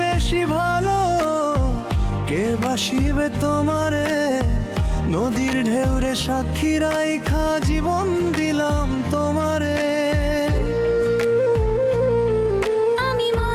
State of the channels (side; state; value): both; identical; correlation 1.00